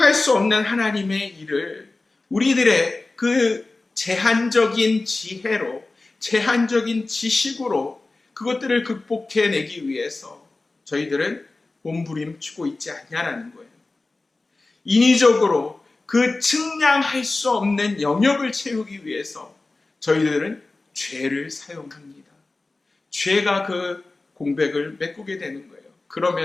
수 없는 하나님의 일을 우리들의 그 제한적인 지혜로, 제한적인 지식으로 그것들을 극복해내기 위해서 저희들은 몸부림치고 있지 않냐라는 거예요. 인위적으로 그 측량할 수 없는 영역을 채우기 위해서 저희들은 죄를 사용합니다. 죄가 그 공백을 메꾸게 되는 거예요.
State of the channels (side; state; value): right; quieter; 3.3 dB